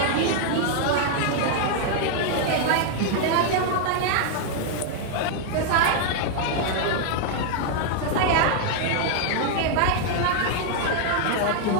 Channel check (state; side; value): different; both; correlation 0.00